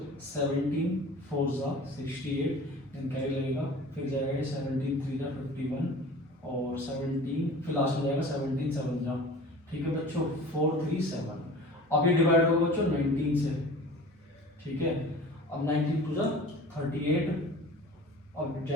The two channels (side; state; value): both; normal; correlation 0.41